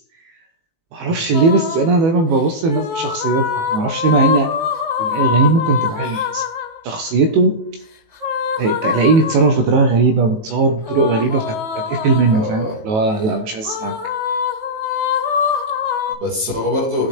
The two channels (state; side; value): late; left; 19 ms